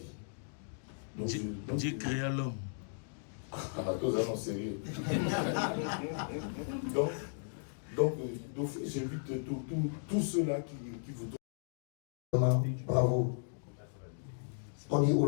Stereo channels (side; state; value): right; silent; digital silence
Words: Donc, Dieu créa l'homme. tous allons sérieux. donc, d'office, j'invite tous ceux-là qui vous... Bravo. On dit